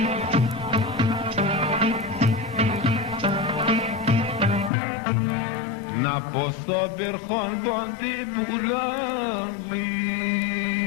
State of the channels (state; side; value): drops out; right; at 4.7 s